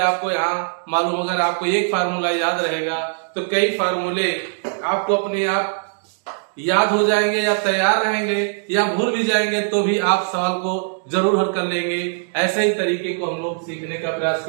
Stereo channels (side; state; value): left; silent; digital silence